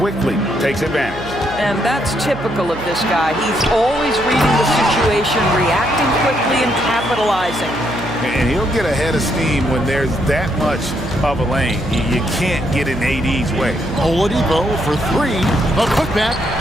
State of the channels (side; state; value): right; noise; hum, 15 dB below the sound